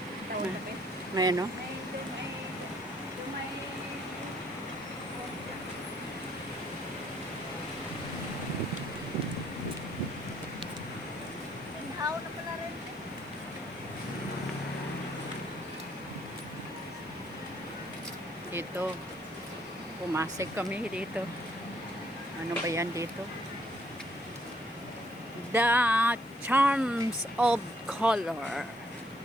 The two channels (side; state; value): left; noise; hiss, 26 dB below the sound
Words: Tawag na ba? May ano? May inhaw na pala rin. Dito. Pumasok kami dito. Ano ba yan dito? The Charms of Color.